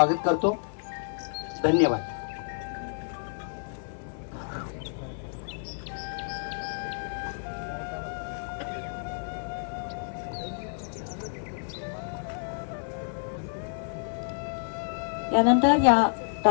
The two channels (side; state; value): right; silent; 58 dB below the other